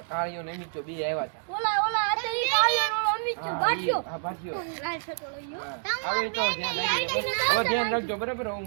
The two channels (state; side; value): silent; left; digital silence